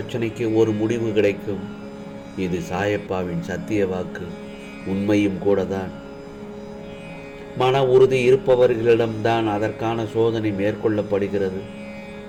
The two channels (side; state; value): both; identical; correlation 1.00